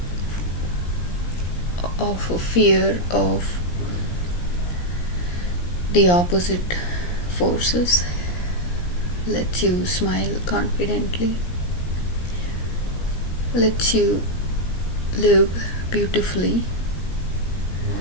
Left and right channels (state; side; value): late; right; 17 ms